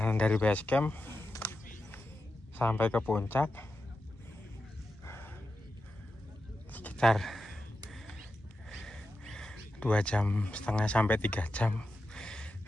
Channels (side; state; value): both; normal; correlation 0.90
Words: dari Basecamp sampai ke puncak sekitar 2,5 jam sampai 3 jam